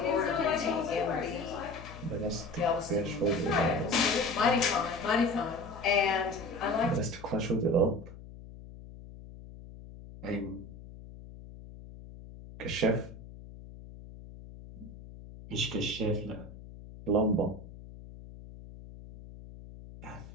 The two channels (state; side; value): noise; left; hum, 16 dB below the sound